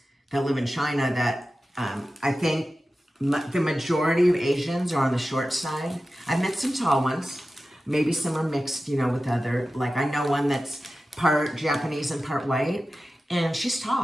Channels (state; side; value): normal; both; correlation 0.94